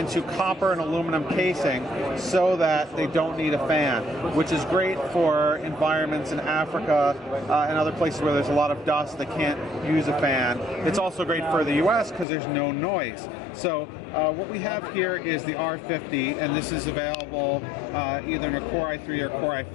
copper and aluminum casing so that they don't need a fan, which is great for environments in Africa and other places where there's a lot of dust that can't use a fan. It's also great for the US because there's no noise. So what we have here is the R50, and this is available either in a Core i3 or Core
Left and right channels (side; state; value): right; drops out; at 12.2 s